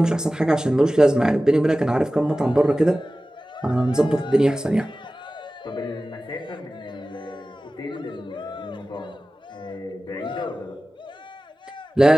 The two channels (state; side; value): normal; both; correlation 0.96